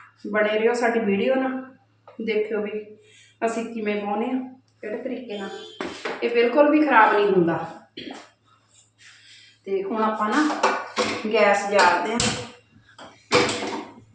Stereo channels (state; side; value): identical; both; correlation 1.00